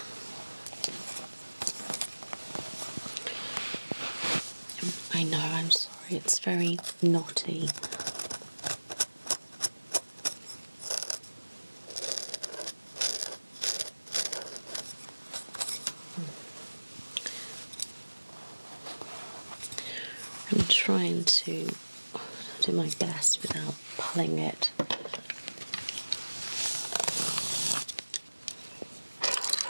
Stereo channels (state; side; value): inverted; both; correlation -1.00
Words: I know, I'm sorry, it's very knotty. I'm trying to do my best without pulling it.